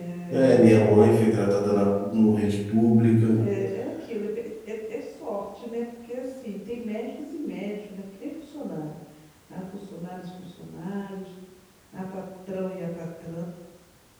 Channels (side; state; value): both; identical; correlation 1.00